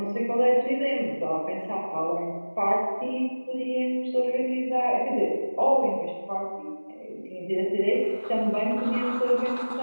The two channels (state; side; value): inverted; both; correlation -1.00